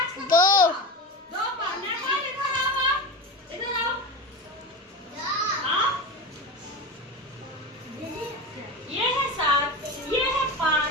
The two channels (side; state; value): both; normal; correlation 0.24